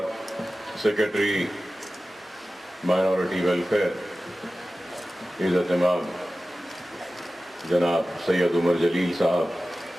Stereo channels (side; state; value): both; normal; correlation 0.95